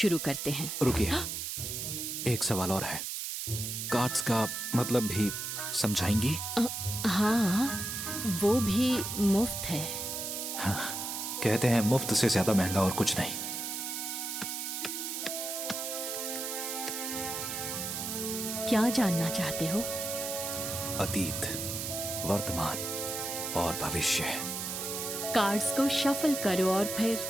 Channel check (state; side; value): noise; right; hiss, 4 dB below the sound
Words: करते हैं। रुकिए, एक सवाल और है। कार्ड्स का मतलब भी समझाएंगी? हाँ, वो भी मुफ्त है। हाँ, कहते हैं मुफ्त से ज्यादा महंगा और कुछ नहीं। क्या जानना चाहते हो? अतीत, वर्तमान और भविष्य। कार्ड्स को शफल करो और